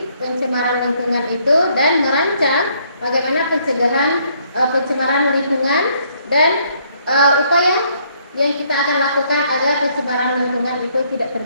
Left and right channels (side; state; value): both; inverted; correlation -0.67